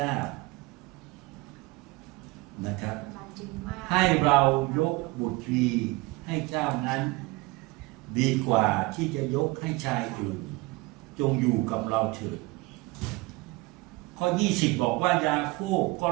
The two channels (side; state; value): left; quieter; 23.1 dB